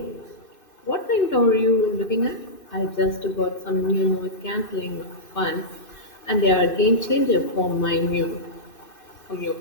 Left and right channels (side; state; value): right; late; 2.6 ms